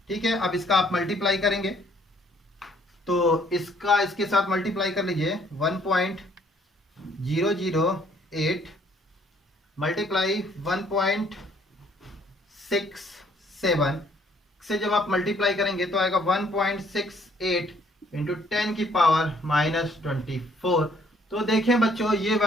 ठीक है। अब इसका आप मल्टीप्लाई करेंगे तो इसका इसके साथ मल्टीप्लाई कर लीजिए, 1.67 008 मल्टीप्लाई 1.67 से जब आप मल्टीप्लाई करेंगे तो आएगा 1.68 इंटू 10 की पावर -24। तो देखें बच्चों, ये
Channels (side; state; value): both; normal; correlation 0.63